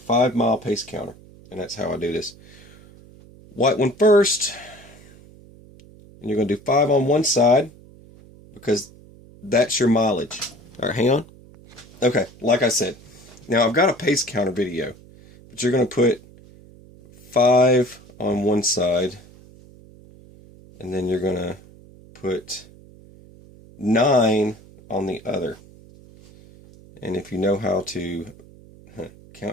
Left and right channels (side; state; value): right; noise; hum, 23 dB below the sound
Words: mile pace counter, and that's how I do this. White one first, and you're going to do 5 on one side because that's your mileage. All right, hang on. Okay, like I said, now I've got a pace counter video, but you're going to put 5 on one side, and then you're going to put 9 on the other. And if you know how to